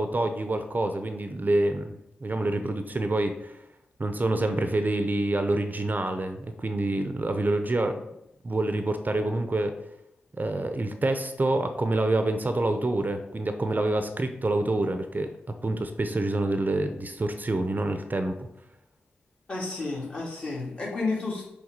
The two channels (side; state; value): both; normal; correlation 0.91